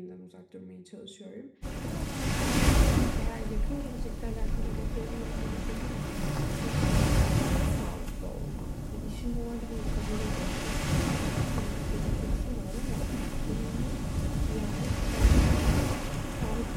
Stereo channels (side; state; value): both; identical; correlation 1.00